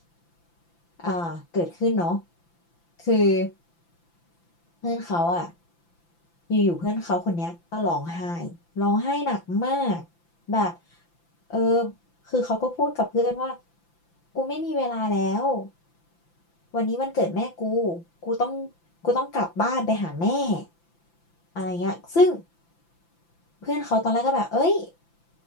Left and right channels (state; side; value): late; right; 5.9 ms